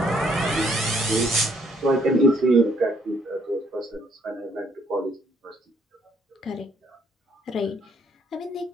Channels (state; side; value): normal; both; correlation 0.67